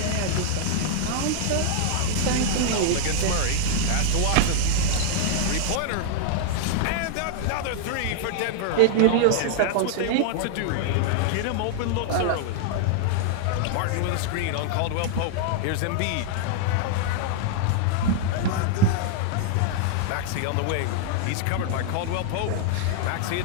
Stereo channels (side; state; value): both; different; correlation -0.01